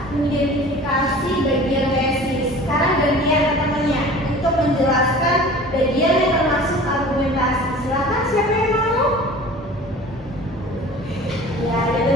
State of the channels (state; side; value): normal; both; correlation 0.43